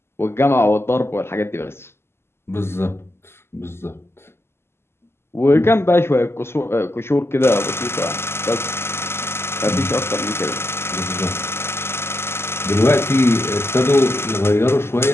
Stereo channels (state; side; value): late; right; 0.12 ms